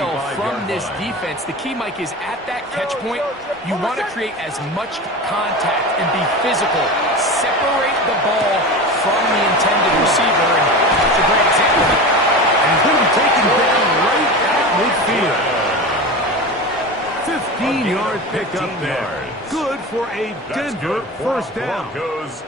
from this defense. The key, Mike, is at that catch point, you want to create as much contact and be physical. Separate the ball from the intended receiver, and it's a great example. And he's going to be taken down right at midfield. 15-yard pickup there. Good for a Denver first down.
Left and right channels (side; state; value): both; normal; correlation 0.28